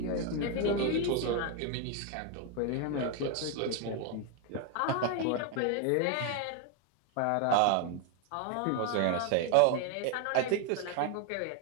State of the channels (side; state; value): both; different; correlation 0.01